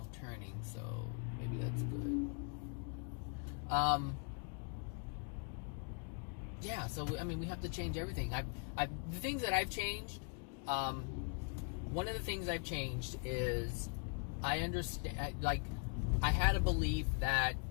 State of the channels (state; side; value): quieter; right; 38.5 dB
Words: turning, so maybe that's good. yeah, so I mean, we have to change everything. The things that I've changed, one of the things I've changed is I understand, like, I had a belief that